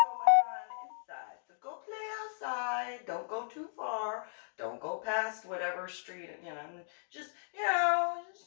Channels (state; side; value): silent; right; digital silence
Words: on inside. So go play outside. Don't go too far. Don't go past whatever street. Just